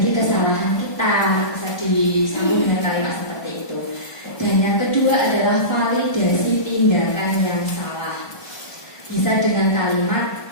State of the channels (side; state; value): right; late; 1.2 ms